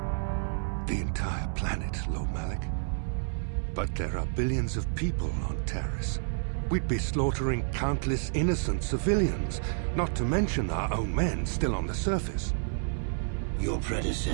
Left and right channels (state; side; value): silent; left; digital silence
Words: The entire planet, Lord Malak? But there are billions of people on Taris. We'd be slaughtering countless innocent civilians, not to mention our own men still on the surface. Your